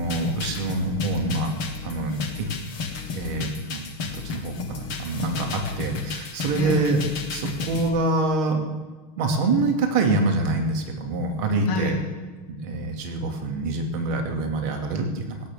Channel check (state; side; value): late; right; 6.4 ms